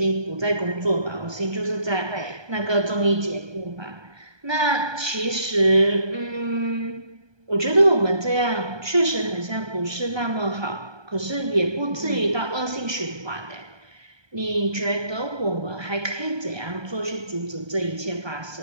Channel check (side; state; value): left; late; 1.2 ms